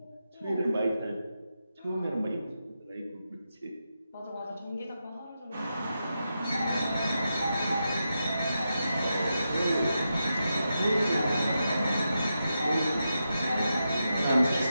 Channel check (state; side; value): inverted; both; correlation -0.87